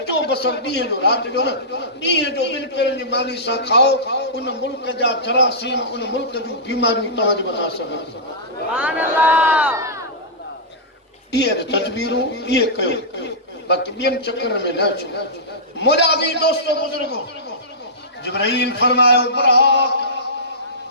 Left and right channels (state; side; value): normal; both; correlation -0.18